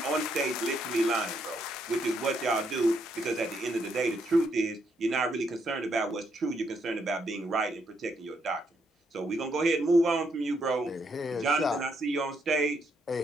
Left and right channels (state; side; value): normal; both; correlation 0.76